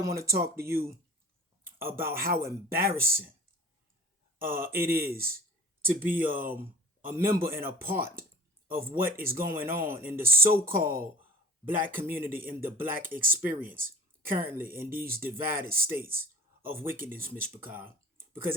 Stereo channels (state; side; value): normal; both; correlation 0.43